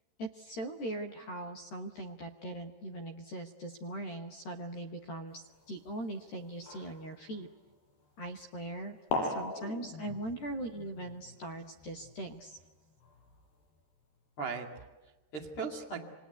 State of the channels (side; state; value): right; late; 13 ms